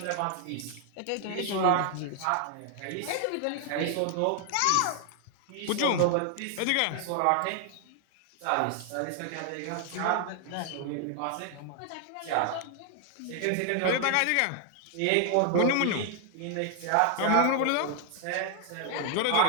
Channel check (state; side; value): different; both; correlation 0.00